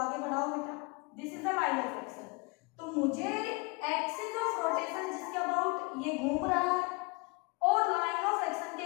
बढ़ाओ बेटा, this is the line of action. तो मुझे एक्सिस ऑफ रोटेशन जिसके अबाउट ये घूम रहा है और लाइन ऑफ एक्शन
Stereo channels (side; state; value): right; quieter; 28.3 dB